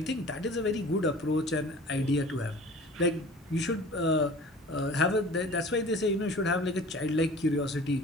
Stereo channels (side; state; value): both; normal; correlation 0.43